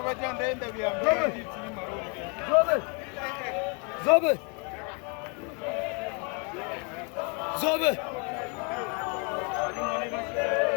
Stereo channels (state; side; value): quieter; right; 35.0 dB